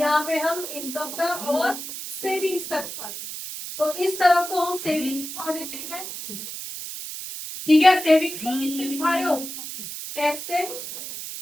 पे हम इनकम का और सेविंग्स का दिखा रहे हैं। तो इस तरफ तो हम सेविंग्स दिखा देते हैं, ठीक है। सेविंग्स को किससे दिखा रहे हो? कैसे?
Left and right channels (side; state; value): right; noise; hiss, 8 dB below the sound